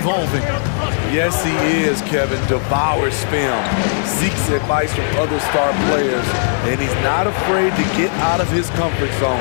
Yes, he is, Kevin. Devours film, seeks advice from other star players, and he's not afraid to get out of his comfort zone.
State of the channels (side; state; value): right; silent; digital silence